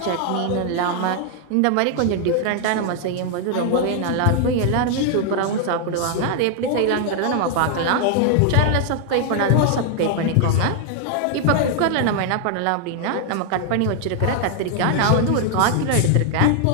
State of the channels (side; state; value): both; different; correlation 0.00